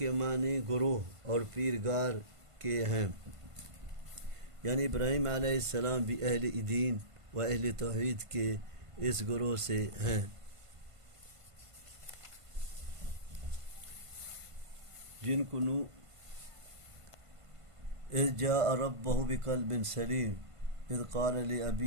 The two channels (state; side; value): late; left; 1.5 ms